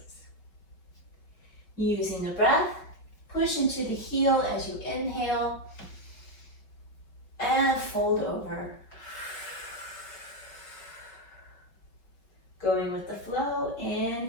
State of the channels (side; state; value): right; late; 5.3 ms